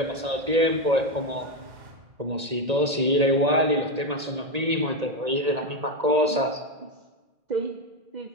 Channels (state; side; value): late; left; 1.9 ms